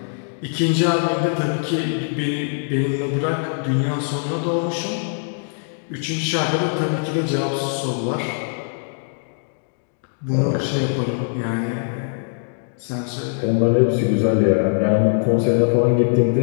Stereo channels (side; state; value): right; silent; digital silence